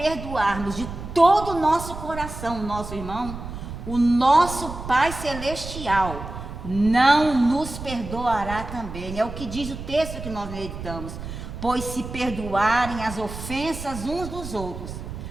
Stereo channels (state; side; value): noise; right; rumble, 10 dB below the sound